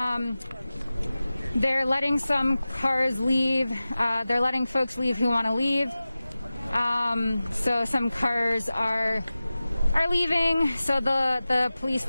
They're letting some cars leave. They're letting folks leave who want to leave. So some cars are leaving. So the police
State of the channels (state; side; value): inverted; both; correlation -0.96